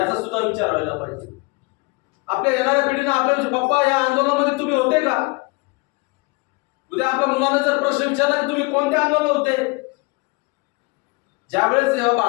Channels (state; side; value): quieter; right; 27.4 dB